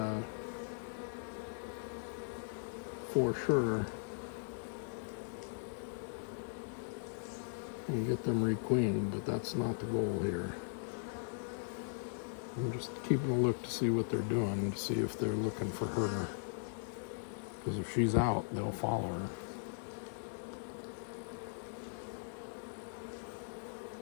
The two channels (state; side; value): silent; right; 52 dB below the other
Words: for sure and get them requeened, but that's not the goal here. I'm just keeping a look to see what they're doing, to see if they're looking for her. Because if she's out, they'll follow her.